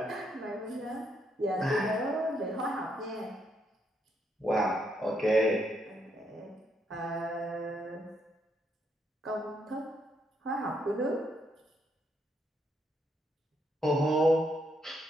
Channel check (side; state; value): both; normal; correlation 0.76